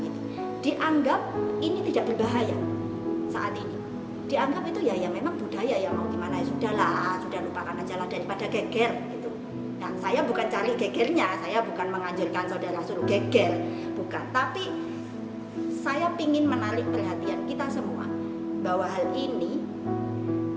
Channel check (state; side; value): identical; both; correlation 1.00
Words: itu. Dianggap ini tidak berbahaya saat ini. Dianggap itu ya memang budaya, ya mau gimana, ya sudahlah, sudah lupakan aja lah daripada geger gitu. Nah, saya bukan cari gegernya, saya bukan menganjurkan saudara suruh geger, bukan. Tapi saya ingin menarik perhatian kita semua bahwa hal ini